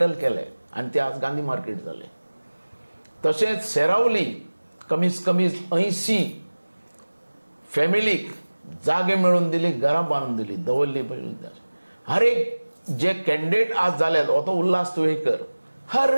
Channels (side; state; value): both; inverted; correlation -1.00